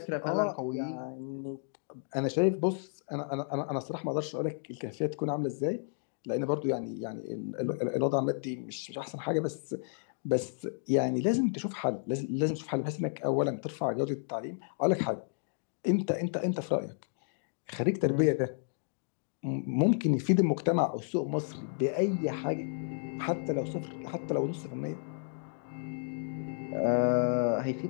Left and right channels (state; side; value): silent; right; digital silence